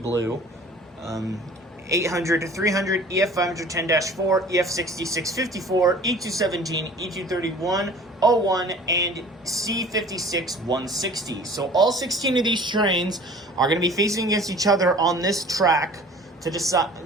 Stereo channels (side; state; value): both; normal; correlation 0.46